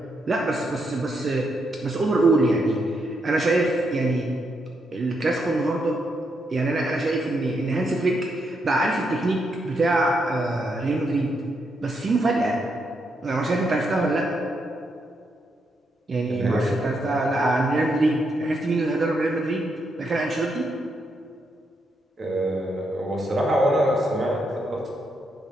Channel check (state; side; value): normal; both; correlation 0.80